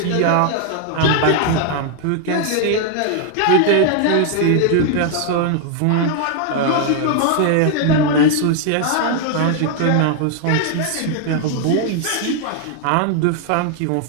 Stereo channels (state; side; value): different; both; correlation 0.00